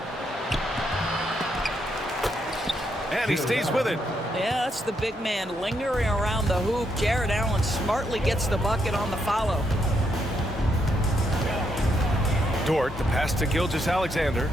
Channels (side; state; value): both; normal; correlation 0.77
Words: And he stays with it. Yeah, that's the big man lingering around the hoop. Jared Allen smartly gets the bucket on the follow. Dort, the pass to Gilgeous-Alexander.